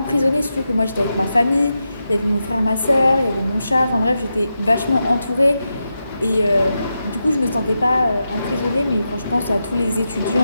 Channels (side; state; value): both; inverted; correlation -0.88